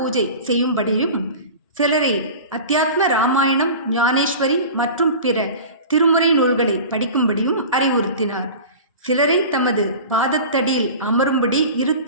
செய்யும்படியும், சிலரை அத்தியாத்ம ராமாயணம், ஞானேஸ்வரி மற்றும் பிற திருமுறை நூல்களை படிக்கும்படியும் அறிவுறுத்தினார். சிலரை தமது பாதத்தடியில் அமரும்படி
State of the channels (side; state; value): both; inverted; correlation -0.35